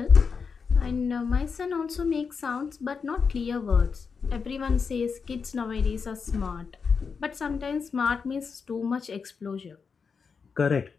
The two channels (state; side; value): quieter; right; 5.6 dB